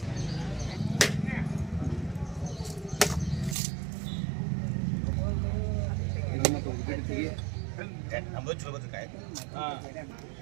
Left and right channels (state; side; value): drops out; left; at 3.6 s